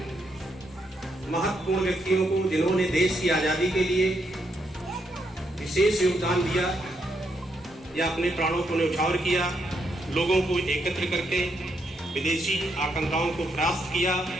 महत्वपूर्ण व्यक्तियों को, जिन्होंने देश की आजादी के लिए विशेष योगदान दिया या अपने प्राणों को न्यौछावर किया, लोगों को एकत्र करके विदेशी आकांक्षाओं को परास्त किया,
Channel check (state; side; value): normal; both; correlation 0.78